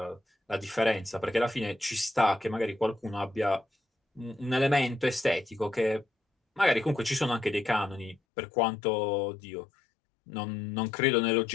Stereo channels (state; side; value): drops out; right; at 8.2 s